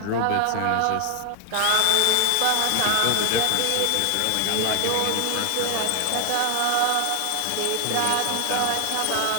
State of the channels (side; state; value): both; different; correlation 0.00